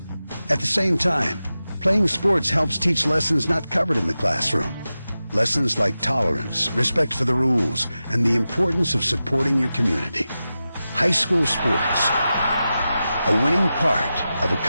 At the same time, playing sports helps teach lessons not covered in the classroom. Lessons like tolerance, respect for the rules, and the importance of supporting your community. High school sports, a winning part of a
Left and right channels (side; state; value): both; inverted; correlation -0.93